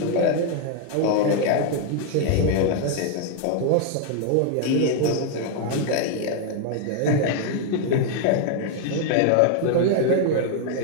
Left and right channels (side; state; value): both; different; correlation 0.00